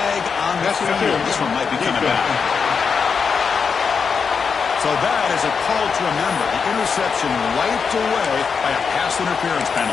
on the field. This one might be coming back. So that is a call to remember. The interception wiped away by a pass interference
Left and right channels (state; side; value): quieter; right; 5.8 dB